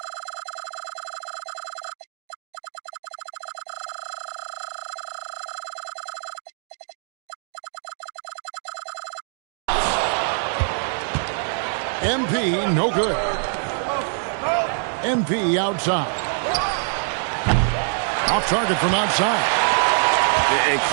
MP, no good. MP outside. Off target from outside. And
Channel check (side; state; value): left; silent; digital silence